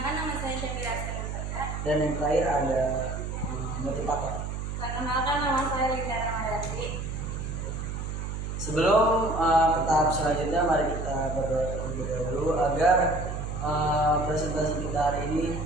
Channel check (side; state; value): right; noise; hum, 5 dB below the sound